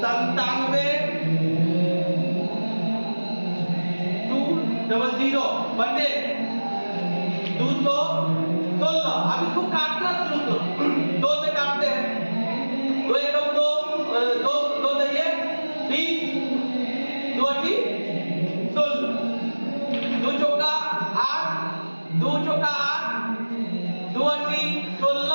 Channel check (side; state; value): both; inverted; correlation -1.00